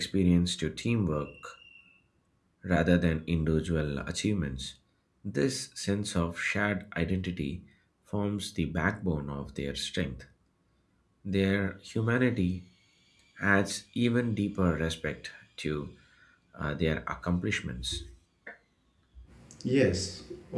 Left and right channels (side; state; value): both; identical; correlation 1.00